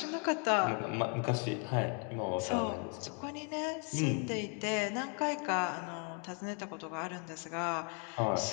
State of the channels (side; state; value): right; quieter; 36.6 dB